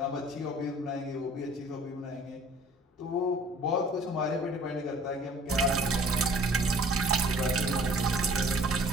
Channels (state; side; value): normal; both; correlation 0.52